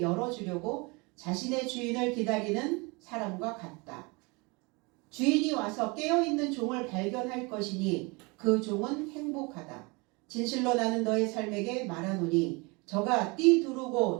열어주려고 자신의 주인을 기다리는 사람과 같다. 주인이 와서 깨어있는 종을 발견할 것이니 그 종은 행복하다. 진실로 나는 너의 삶에게 말하노니 저가 띠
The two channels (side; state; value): left; quieter; 27.8 dB